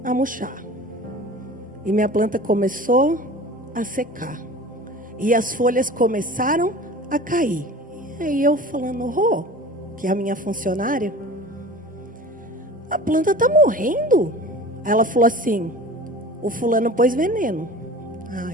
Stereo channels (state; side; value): normal; both; correlation 0.39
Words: a murchar. E minha planta começou a secar. E as folhas começaram a cair. E aí eu falando, que é a minha funcionária, a planta está morrendo. Ela falou assim, o fulano pôs veneno.